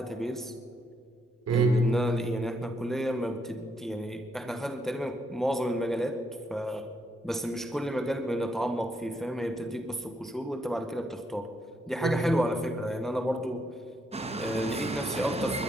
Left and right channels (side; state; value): both; normal; correlation 0.76